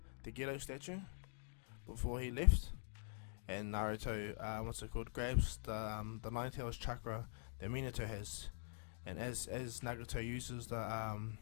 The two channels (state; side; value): silent; right; digital silence